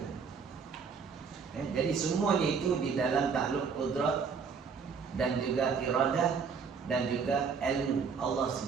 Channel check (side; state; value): left; quieter; 5.7 dB